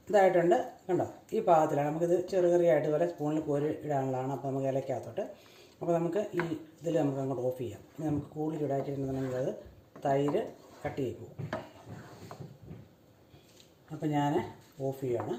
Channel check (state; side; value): identical; both; correlation 1.00